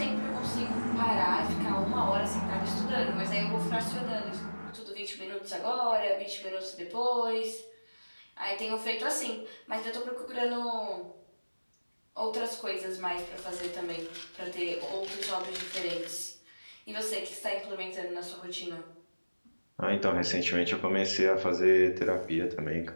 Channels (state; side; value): inverted; both; correlation -1.00